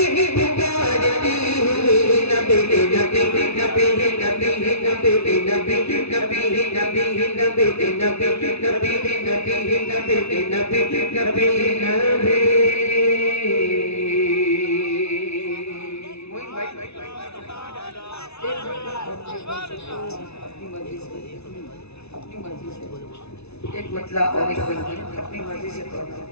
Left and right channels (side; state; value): right; late; 0.80 ms